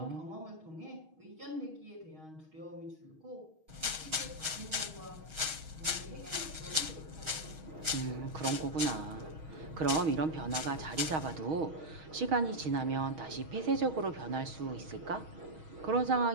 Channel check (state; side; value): late; left; 6.4 ms